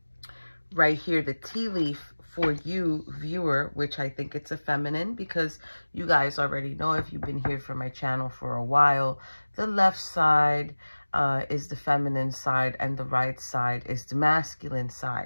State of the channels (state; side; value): inverted; both; correlation -1.00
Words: right here, the tea leaf for you, viewer, which I think it's a feminine, because you guys already know, if you've been here for my channel for a while, the left side is the feminine side and the right side is the masculine